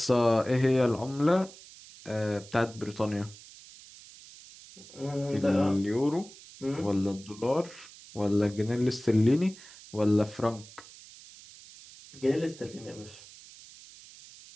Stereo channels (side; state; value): right; noise; hiss, 19 dB below the sound